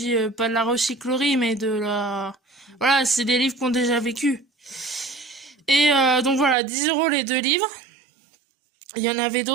pas de la recyclerie, mais de la... Voilà, c'est des livres qu'on a déjà vécu. Et donc voilà, 10 € les 2 livres. Il y en avait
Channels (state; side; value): drops out; left; at 6.6 s